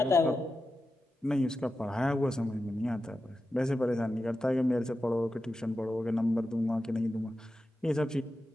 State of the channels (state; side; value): normal; both; correlation 0.91